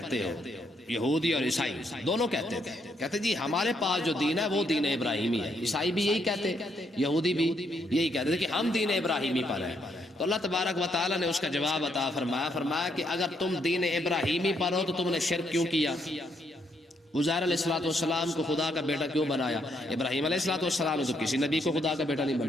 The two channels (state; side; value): normal; both; correlation 0.74